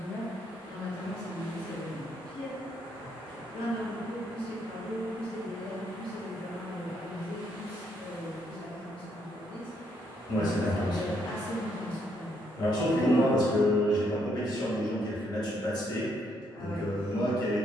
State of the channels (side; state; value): both; normal; correlation 0.73